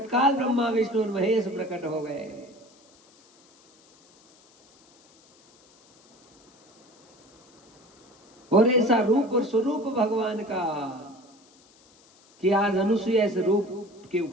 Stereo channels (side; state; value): left; noise; hiss, 30 dB below the sound